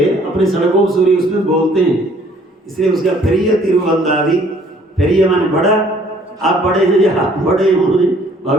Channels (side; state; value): both; normal; correlation 0.59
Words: अपने सरगोपसुरी उसमें बोलते हैं। इसलिए उसका पेरिय तिरुवंदादि, पेरिय माने बड़ा, आप बड़े हैं या आप बड़े हैं, उन्होंने